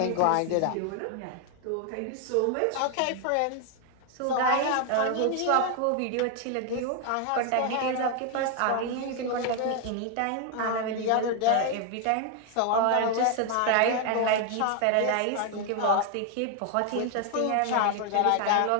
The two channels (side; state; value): both; different; correlation 0.00